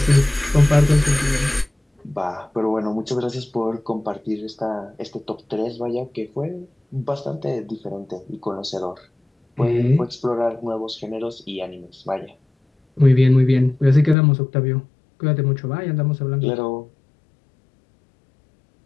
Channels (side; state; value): right; drops out; at 14.2 s